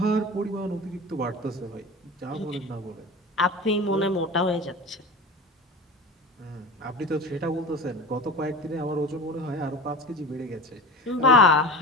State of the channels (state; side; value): normal; both; correlation 0.31